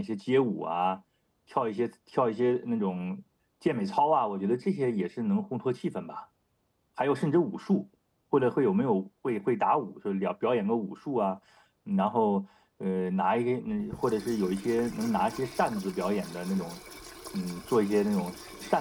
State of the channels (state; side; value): identical; both; correlation 1.00